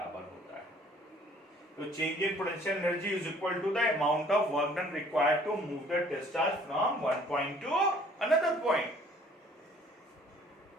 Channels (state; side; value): normal; both; correlation 0.56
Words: होता है। तो change in potential energy is equal to the amount of work done required to move the test charge from one point to another point.